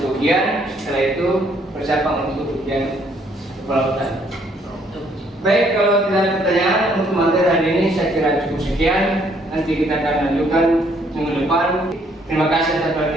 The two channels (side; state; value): both; normal; correlation 0.66